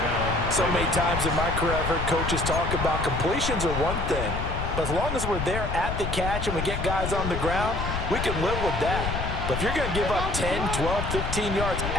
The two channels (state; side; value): noise; left; rumble, 3 dB below the sound